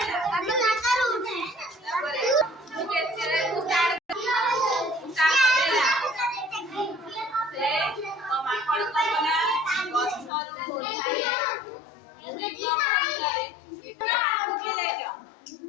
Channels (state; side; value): drops out; right; at 10.3 s